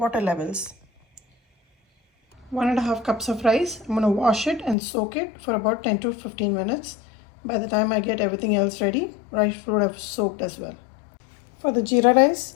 levels. 1.5 cups of rice. I'm going to wash it and soak it for about 10 to 15 minutes. By the time I get everything else ready, rice would have soaked as well. For the jeera rice,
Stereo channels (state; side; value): drops out; right; at 4.8 s